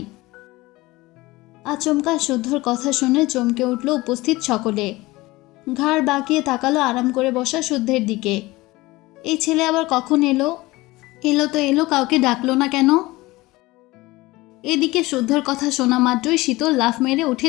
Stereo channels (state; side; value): quieter; right; 20.3 dB